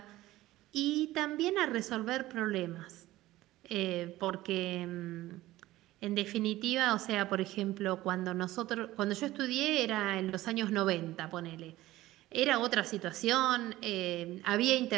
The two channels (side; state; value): left; quieter; 16.6 dB